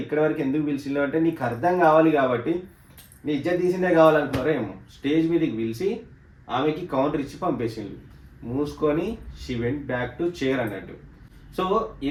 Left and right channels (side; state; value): both; identical; correlation 1.00